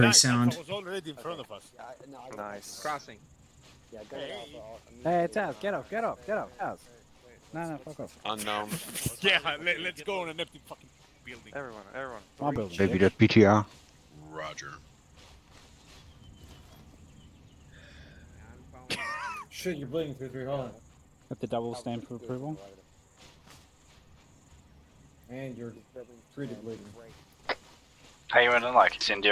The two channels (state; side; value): identical; both; correlation 1.00